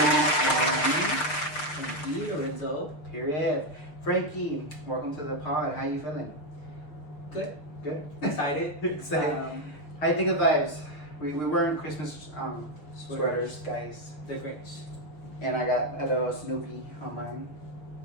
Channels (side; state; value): right; late; 6.7 ms